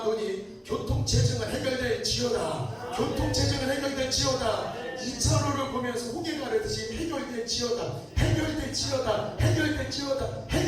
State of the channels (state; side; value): identical; both; correlation 1.00